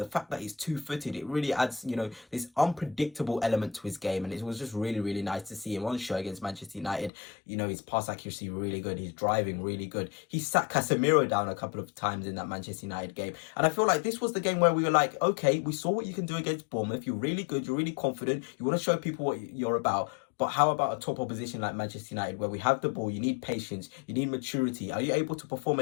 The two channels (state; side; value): drops out; right; at 7.1 s